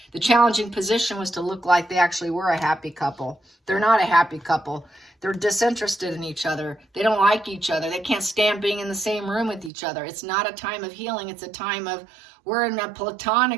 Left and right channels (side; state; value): left; drops out; at 9.7 s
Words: The challenging position was to look like they actually were a happy couple. They're not a happy couple. They're disinterested in each other. They don't like each other. They can't stand being in the same room with each other. It's not a time of healing. It's a time of, we're in a